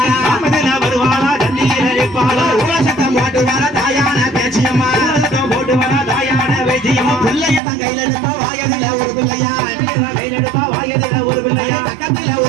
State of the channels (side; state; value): left; drops out; at 7.6 s